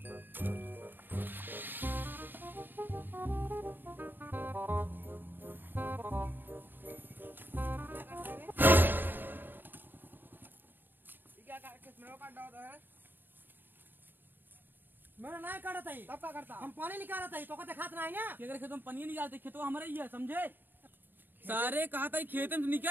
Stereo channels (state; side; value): late; left; 0.093 ms